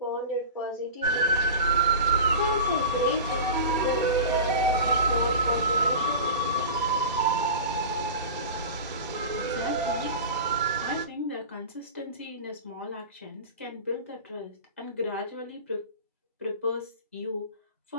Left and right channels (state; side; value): inverted; both; correlation -0.32